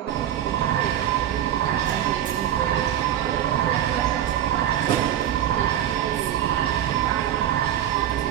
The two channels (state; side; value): quieter; left; 11.1 dB